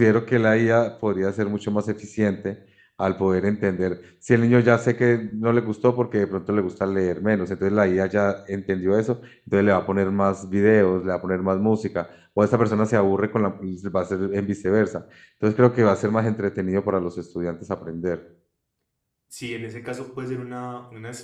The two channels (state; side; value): identical; both; correlation 1.00